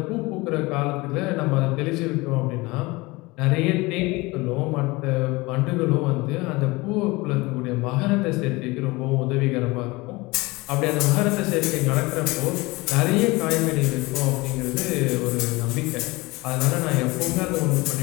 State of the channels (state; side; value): quieter; right; 22.8 dB